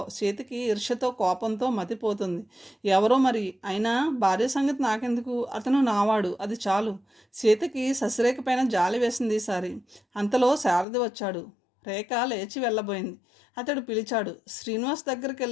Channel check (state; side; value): drops out; right; at 10.9 s